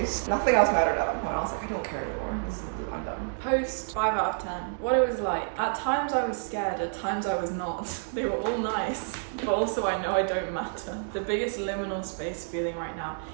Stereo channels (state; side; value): silent; left; digital silence